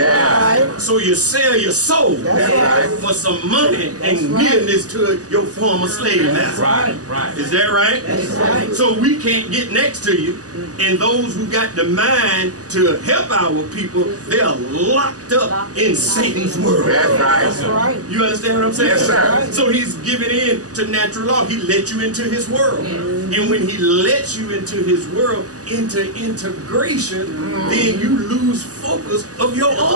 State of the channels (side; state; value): left; late; 0.67 ms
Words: So you sell your soul right. for some money and nearness to your former slave master. Right. Right. Is that right? That's right. So we can't get next to you, and those who got the mind to help our people, they are locked up in Satan's world. That's That's right. right. You understand what I'm saying? Yes, sir. So he's giving in to natural law. He let you into his world. And when he lets you into his world, into integration, then you lose focus of your